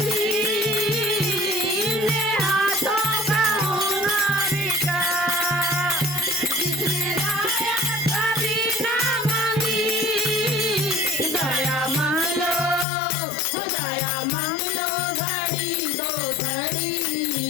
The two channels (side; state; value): right; drops out; at 12.9 s